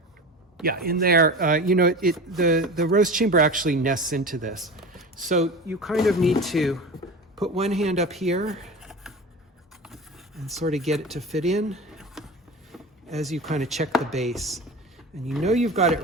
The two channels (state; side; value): normal; both; correlation 0.31